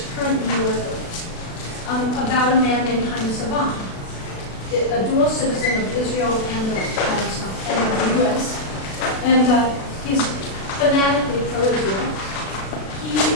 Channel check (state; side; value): late; right; 36 ms